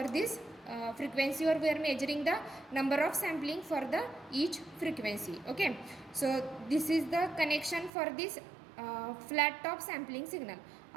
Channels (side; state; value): left; drops out; at 7.9 s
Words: this frequency, or we are measuring the number of sampling for the each frequency. Okay, so this is the connection for this flat top sampling signal.